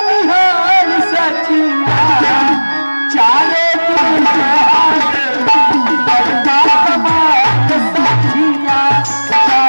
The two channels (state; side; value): inverted; both; correlation -1.00